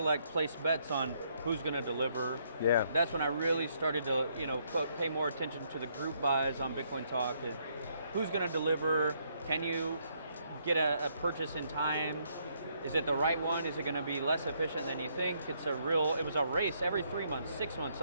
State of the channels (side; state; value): both; inverted; correlation -0.72